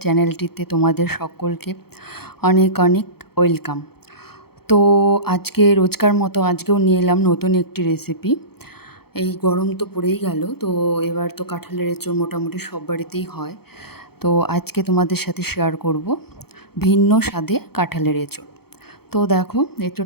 চ্যানেলটিতে তোমাদের সকলকে অনেক অনেক ওয়েলকাম। তো আজকে রোজকার মতো আজকেও নিয়ে এলাম নতুন একটি রেসিপি। এই গরম তো পড়েই গেল, তো এবার তো কাঁঠালের এঁচোড় মোটামুটি সব বাড়িতেই হয়। তো আজকে তোমাদের সাথে শেয়ার করব ভিন্ন স্বাদে কাঁঠালের এঁচোড়। তো দেখো,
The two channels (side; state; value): right; late; 0.96 ms